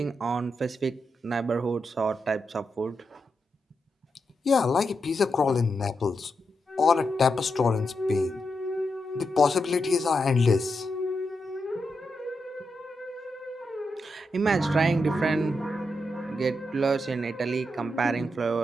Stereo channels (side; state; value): both; normal; correlation 0.85